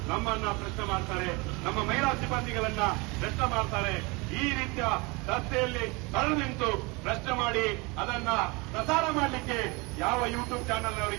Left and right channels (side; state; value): left; quieter; 26.8 dB